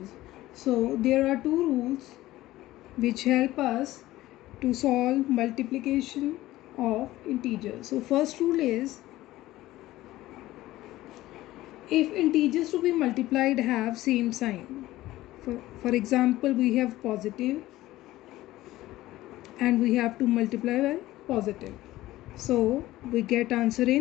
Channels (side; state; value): right; quieter; 16.4 dB